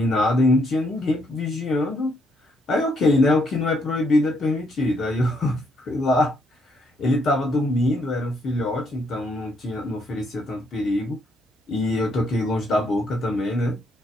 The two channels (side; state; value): both; normal; correlation 0.73